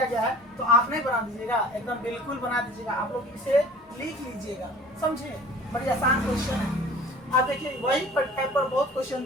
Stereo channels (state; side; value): normal; both; correlation 0.45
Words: गया है, तो आप नहीं बना दीजिएगा, एकदम बिल्कुल बना दीजिएगा, आप लोग इसे लिख लीजिएगा, समझे, बड़ी आसान क्वेश्चन है। आप देखिए वही टाइप पर बहुत क्वेश्चन